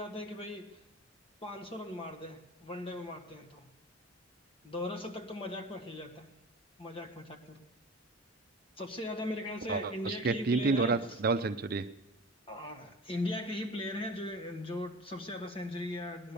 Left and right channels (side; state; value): both; normal; correlation 0.37